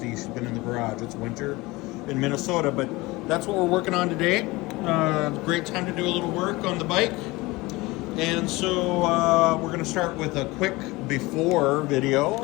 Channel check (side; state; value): right; quieter; 21.8 dB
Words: she's been in the garage. It's winter in Minnesota, but that's what we're working on today. Great time to do a little work on the bike. And so we're gonna start with a quick before